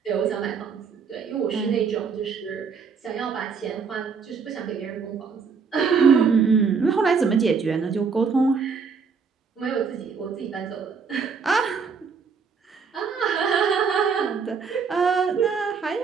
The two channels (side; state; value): left; quieter; 5.7 dB